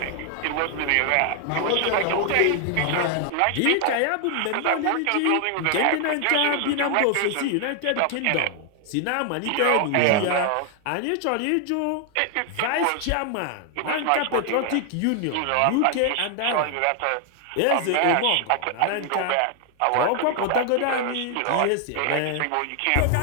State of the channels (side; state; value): both; different; correlation 0.00